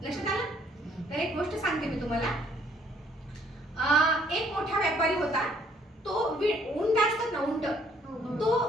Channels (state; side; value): normal; both; correlation 0.64